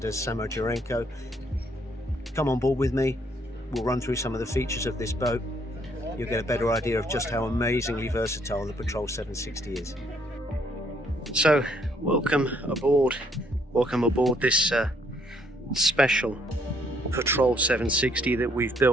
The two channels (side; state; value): both; normal; correlation 0.68